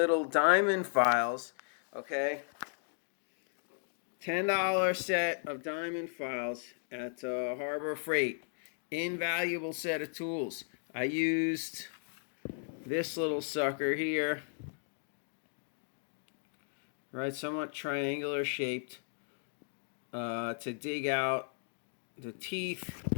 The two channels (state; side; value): silent; right; digital silence